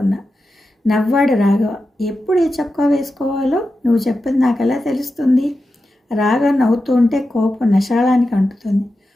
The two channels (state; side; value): normal; both; correlation 0.91